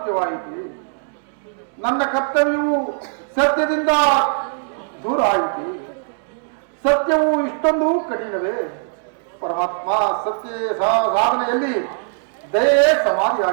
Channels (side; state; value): left; silent; digital silence